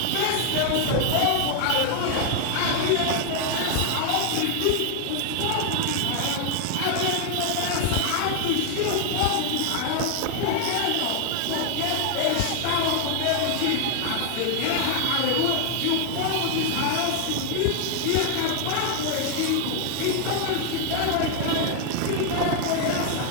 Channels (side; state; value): both; different; correlation 0.00